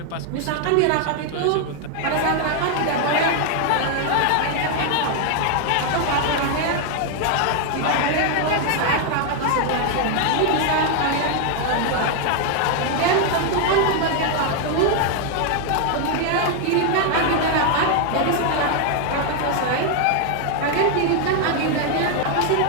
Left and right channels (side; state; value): both; different; correlation 0.00